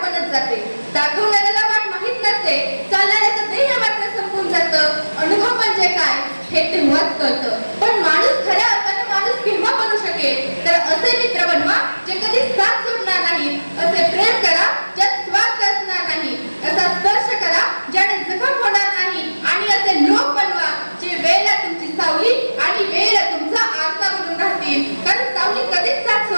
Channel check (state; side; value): inverted; both; correlation -1.00